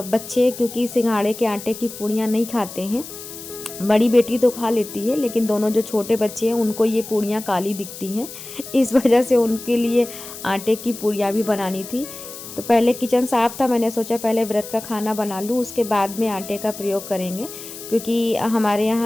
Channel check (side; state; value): left; noise; hiss, 13 dB below the sound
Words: बच्चे क्योंकि सिंघाड़े के आटे की पूड़ियाँ नहीं खाते हैं। बड़ी बेटी तो खा लेती है, लेकिन दोनों जो छोटे बच्चे हैं उनको ये पूड़ियाँ काली दिखती हैं, इस वजह से उनके लिए आटे की पूड़ियाँ भी बनानी थी। तो पहले किचन साफ़ था, मैंने सोचा पहले व्रत का खाना बना लूँ, उसके बाद में आटे का प्रयोग करेंगे, क्योंकि हमारे